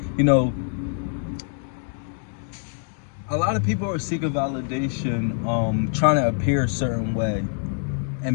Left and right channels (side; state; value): right; silent; 62 dB below the other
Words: a lot of people are seeking validation, trying to appear a certain way.